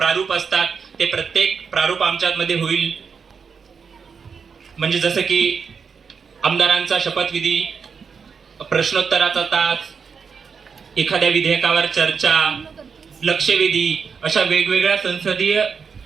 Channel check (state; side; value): quieter; left; 6.0 dB